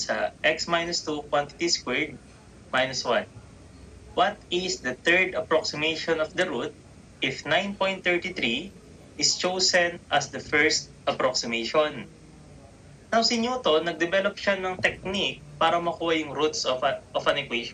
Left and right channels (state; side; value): identical; both; correlation 1.00